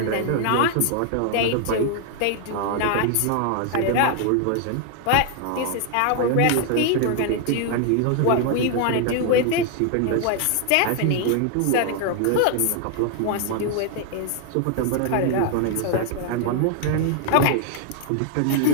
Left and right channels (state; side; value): different; both; correlation 0.00